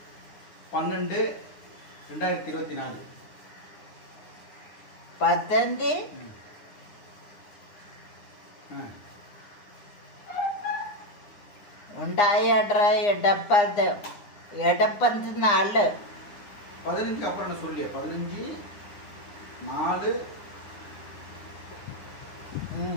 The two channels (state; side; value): late; right; 9.8 ms